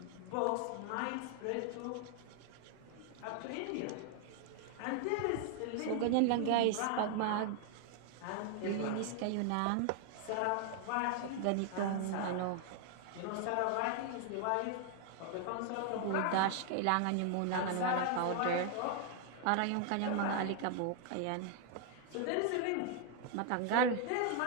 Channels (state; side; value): different; both; correlation 0.00